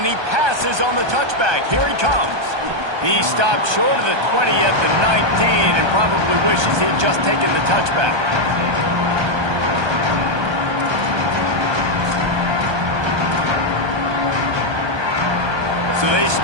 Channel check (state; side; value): late; left; 1.2 ms